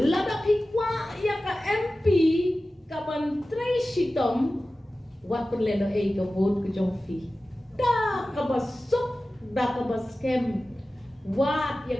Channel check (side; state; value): both; normal; correlation 0.95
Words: lada pikwa ya ka MP kaban tray shitom wat penleno e ka vote ke jongfi da kabasuk da kabaskem wat